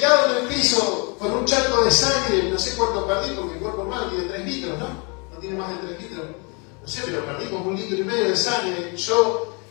en el piso, con un charco de sangre, no sé cuánto perdí, porque el cuerpo humano tiene 3 litros, ¿no? No tiene más de 3 litros. No sé, pero perdí como 1,5 litros de sangre. Yo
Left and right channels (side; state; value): right; quieter; 33.0 dB